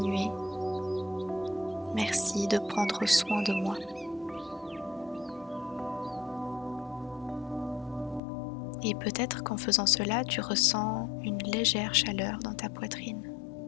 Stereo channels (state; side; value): drops out; right; at 8.2 s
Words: Merci de prendre soin de moi. Et peut-être qu'en faisant cela, tu ressens une légère chaleur dans ta poitrine.